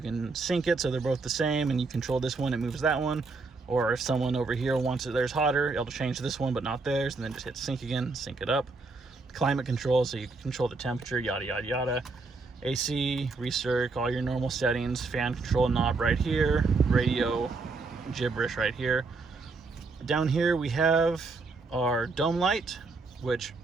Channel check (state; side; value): quieter; left; 3.9 dB